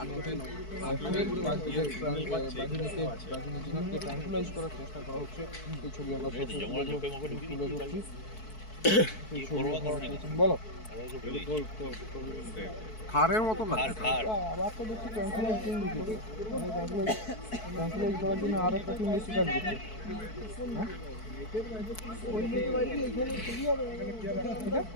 ট্রান্সফারাইজ করার চেষ্টা করা হচ্ছে। এই ছবি আমরা তুলে ধরছি। বলো খারের মতো আবার তো দেখছি ট্রান্সফারাইজ করার জন্য আরো একটা টিম বেশি কাজ করছে।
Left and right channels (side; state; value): right; late; 4.6 ms